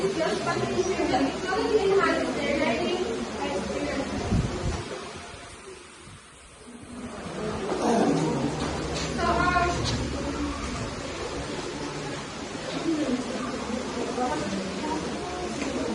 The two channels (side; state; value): both; identical; correlation 1.00